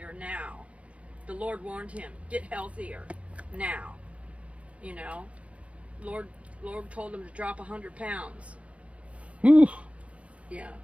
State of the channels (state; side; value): late; left; 0.063 ms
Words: now. The Lord warned him, get healthier now. You know, Lord told him to drop 100 pounds. Whew. Yeah.